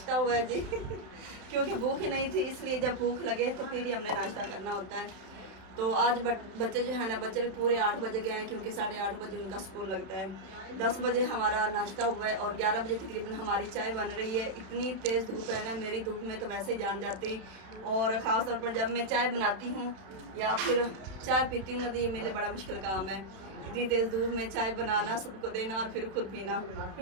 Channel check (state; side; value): late; left; 31 ms